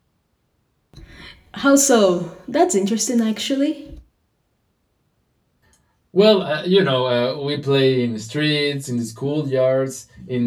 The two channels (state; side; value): identical; both; correlation 1.00